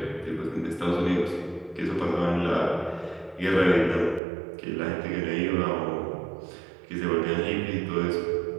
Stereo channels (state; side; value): drops out; left; at 4.2 s